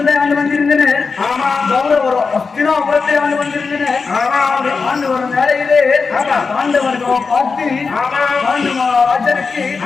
ஆண்டு வந்திருந்தனர், கௌரவர் அஸ்தினாபுரத்தை ஆண்டு வந்திருந்தனர். ஆண்டு வரும் வேலையிலே பாண்டவர்கள் பார்த்து ராஜனுக்கு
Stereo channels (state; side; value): quieter; right; 4.8 dB